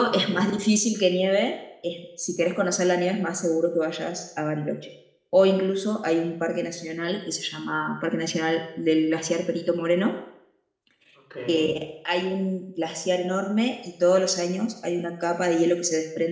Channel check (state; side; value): identical; both; correlation 1.00